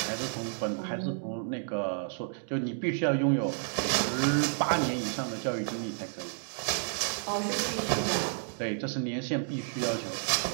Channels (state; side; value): silent; left; digital silence